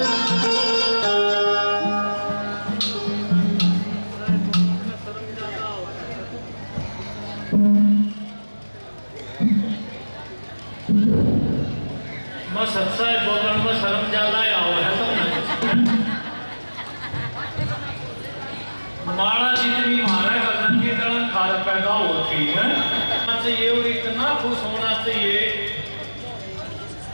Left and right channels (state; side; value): inverted; both; correlation -1.00